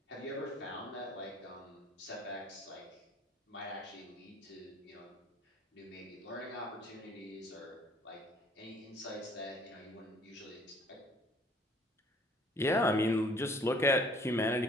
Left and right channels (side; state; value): both; normal; correlation 0.56